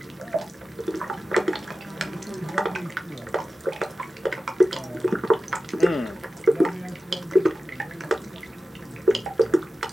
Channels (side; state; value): both; normal; correlation 0.93